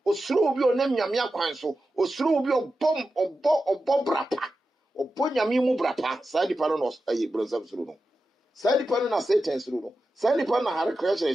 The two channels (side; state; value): both; normal; correlation 0.91